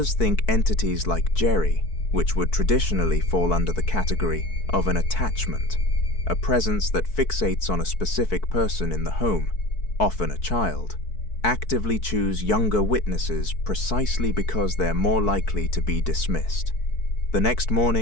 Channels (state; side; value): late; right; 4.6 ms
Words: think entities like Jerry, which would traditionally fall under the category of an attachment, a presence that fixates on a specific person in the home, often a child, actively choose younger witnesses precisely because they're more likely to be dismissed. The next